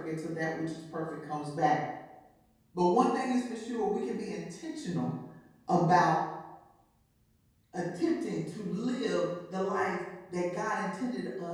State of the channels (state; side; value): identical; both; correlation 1.00